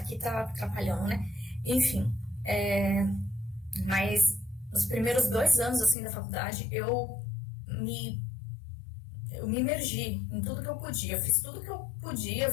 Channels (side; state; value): right; drops out; at 6.0 s